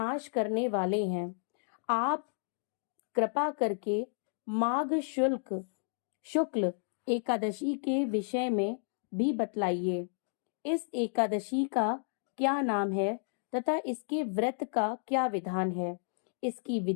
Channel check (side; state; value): right; silent; digital silence